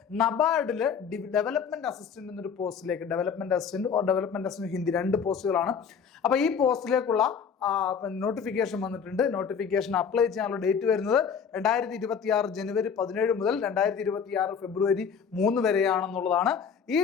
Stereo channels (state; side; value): quieter; right; 6.7 dB